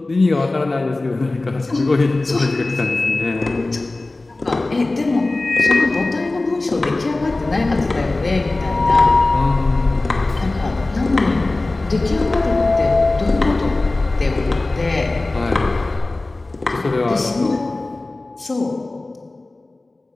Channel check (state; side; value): quieter; right; 3.0 dB